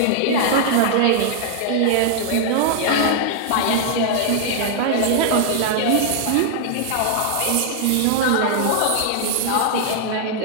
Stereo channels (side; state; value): both; different; correlation 0.00